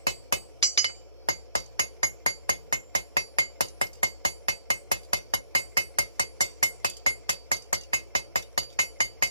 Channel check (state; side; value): inverted; both; correlation -0.67